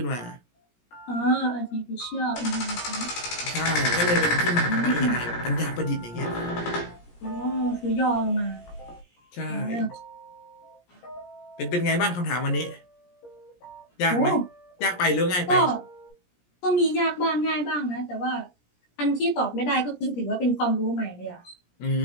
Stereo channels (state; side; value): late; right; 17 ms